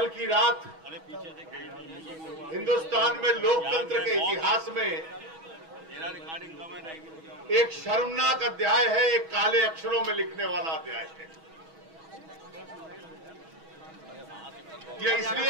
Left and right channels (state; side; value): late; left; 6.2 ms